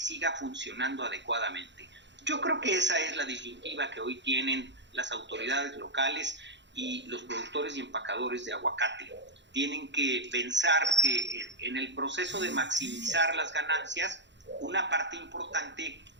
funcionando adecuadamente. Yo creo que esa es la disyuntiva que hoy tienen las autoridades locales y los productores y empacadores de aguacate. Tienen que pensar que en el proceso de maximizar las ganancias, una parte importante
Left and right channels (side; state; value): left; late; 0.52 ms